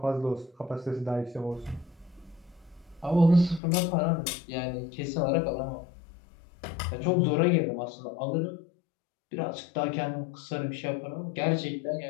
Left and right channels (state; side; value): drops out; right; at 3.6 s